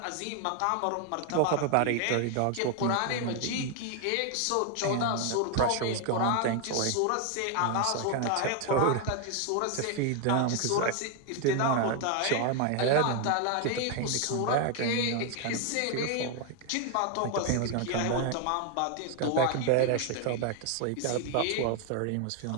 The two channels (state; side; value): different; both; correlation 0.01